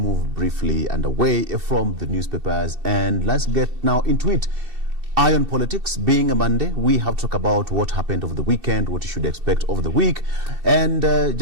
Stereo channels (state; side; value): late; left; 2.7 ms